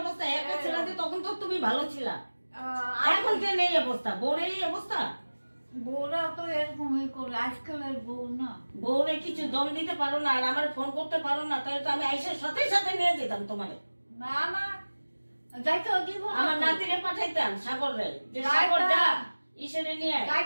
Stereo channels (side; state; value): both; inverted; correlation -1.00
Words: অবস্থা, একা ছিল যে তখন তো তুমি ভালো ছিলা, এখন কেন এই অবস্থা, বউর এই অবস্থা? বউরা তো এরকমই করে, আজকালের বউ না। বউরে কিছু দম দিতে পারো না, আর আমার ফোন করতে পারো না, তাহলে তো আমি আইসার সাথে সাথে নিয়ে যেতাম তোমারে। না না, যাইতে দিব না, আমার নাতিরে পাঠাইতাম সাগরে, যে সাগর যা ইসেরে নিয়ে আয়,